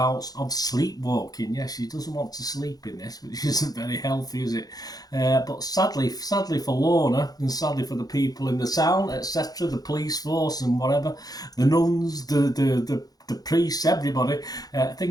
of sleepwalking. Yes, she doesn't want to sleep in this, which isn't very healthy, is it? But sadly for Lorna, and sadly for the people in the town, etc., the police force and whatever, the nuns, the priests, everybody,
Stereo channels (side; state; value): right; late; 0.18 ms